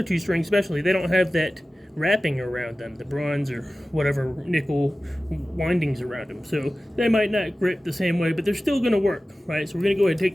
2 strings especially, they don't have that wrapping around them, the bronze or whatever nickel windings around them, so they might not grip the same way, but they're still going to work, right? So we're going to go ahead and take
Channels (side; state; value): both; normal; correlation 0.96